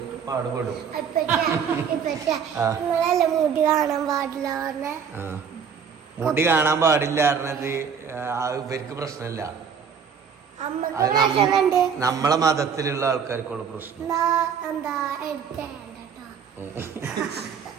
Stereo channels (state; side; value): quieter; left; 6.9 dB